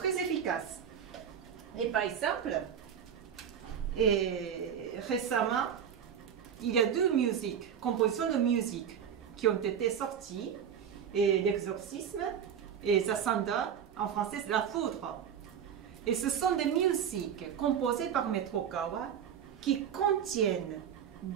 efficace. Et par exemple, récemment, il y a 2 musiques, compositions de musique qui ont été sorties, et l'exorcisme et Zasanda, en français c'est la foudre. Et ce sont des musiques composées par Maître Okawa qui contiennent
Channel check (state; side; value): quieter; left; 8.3 dB